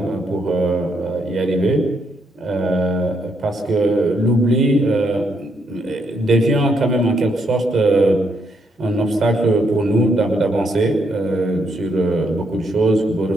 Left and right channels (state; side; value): normal; both; correlation 0.76